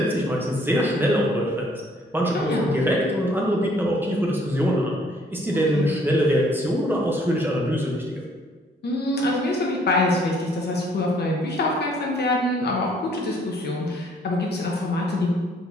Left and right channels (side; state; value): both; normal; correlation 0.62